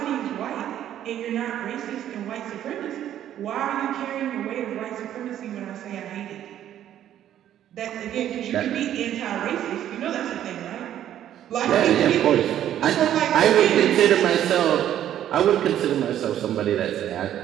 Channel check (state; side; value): quieter; left; 11.2 dB